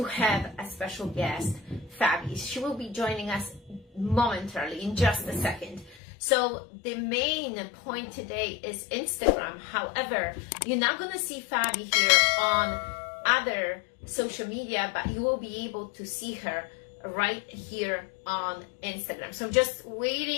have a special guest, Fabi. She will be joining us momentarily in just a second. So the main point today is Instagram. However, you're not going to see Fabi here on other social media, but you will be able to see her right here on Instagram. So I'm just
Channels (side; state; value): right; drops out; at 6.0 s